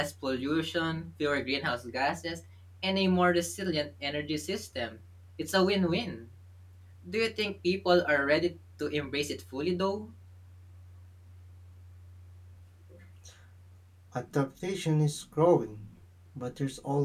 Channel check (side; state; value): both; identical; correlation 1.00